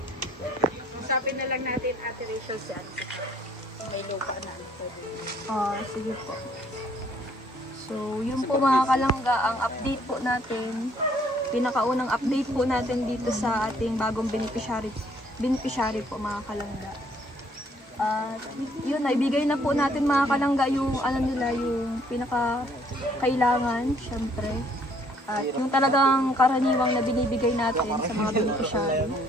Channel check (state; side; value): normal; both; correlation 0.63